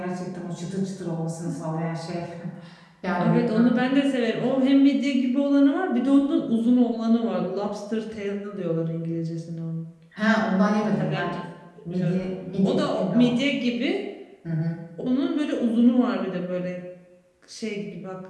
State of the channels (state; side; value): identical; both; correlation 1.00